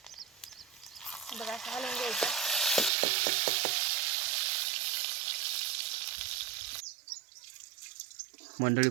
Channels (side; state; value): left; drops out; at 2.9 s